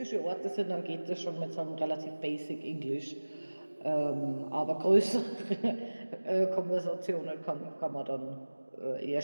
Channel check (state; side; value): inverted; both; correlation -1.00